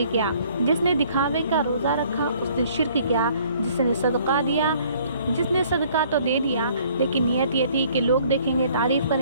کیا، جس نے دکھاوے کا روزہ رکھا اس نے شرک کیا، جس نے صدقہ دیا، جس نے صدقہ تو دے دیا لیکن نیت یہ تھی کہ لوگ دیکھیں گے، تعریف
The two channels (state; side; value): inverted; both; correlation -0.59